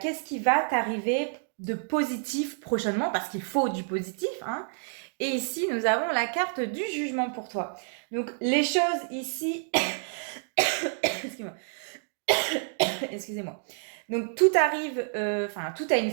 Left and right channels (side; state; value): left; silent; digital silence